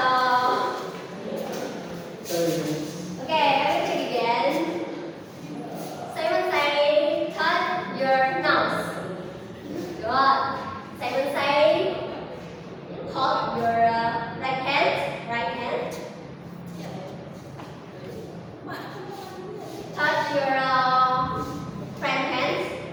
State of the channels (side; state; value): both; identical; correlation 1.00